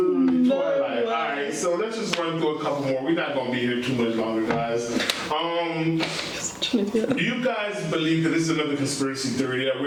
Twilight. Alright, so let's just run through a couple more. We're not going to be here too much longer, guys. You guys believe that this is another conspiracy theory that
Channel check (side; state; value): both; identical; correlation 1.00